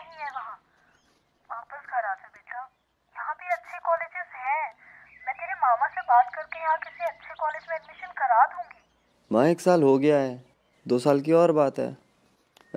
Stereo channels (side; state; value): both; identical; correlation 1.00